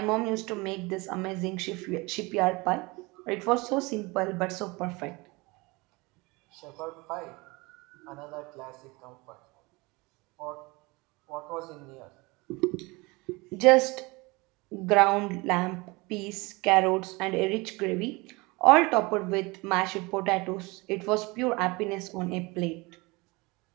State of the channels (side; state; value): left; quieter; 24.7 dB